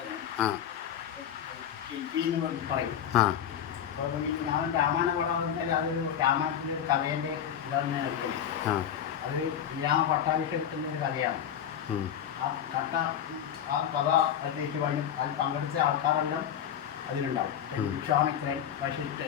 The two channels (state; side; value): quieter; right; 9.4 dB